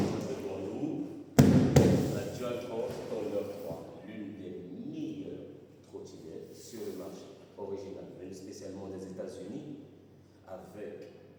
nous la Dualtron Thunder 3, l'une des meilleures trottinettes sur le marché, originale, venue spécialement des États-Unis.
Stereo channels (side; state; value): both; identical; correlation 1.00